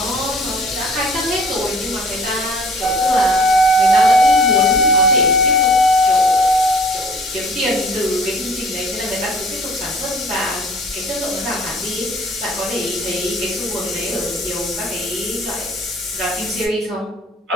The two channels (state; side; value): normal; both; correlation 0.51